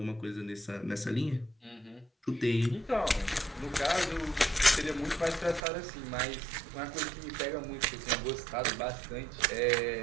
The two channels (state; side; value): drops out; left; at 5.6 s